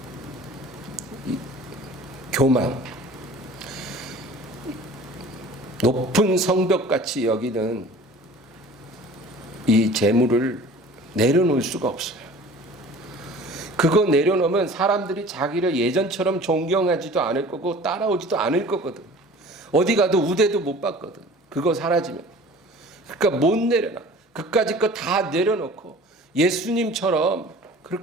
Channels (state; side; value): normal; both; correlation 0.44